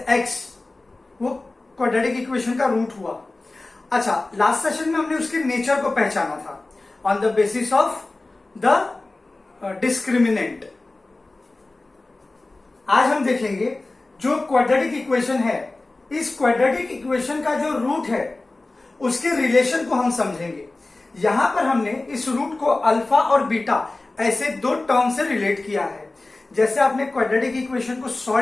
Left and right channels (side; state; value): right; quieter; 3.1 dB